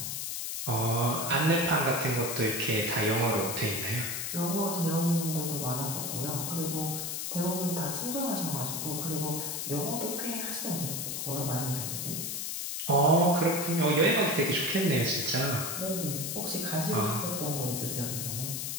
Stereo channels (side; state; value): left; noise; hiss, 3 dB below the sound